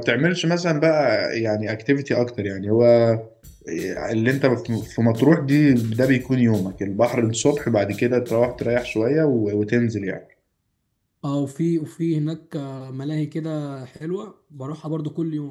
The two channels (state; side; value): identical; both; correlation 1.00